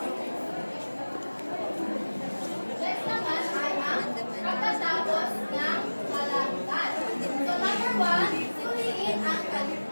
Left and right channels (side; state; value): both; inverted; correlation -1.00